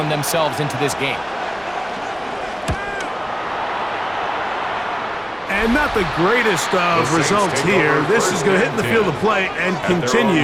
themselves into this game. And not the greatest of results here. This is going to hit in the field of play and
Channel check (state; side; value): noise; right; hum, 28 dB below the sound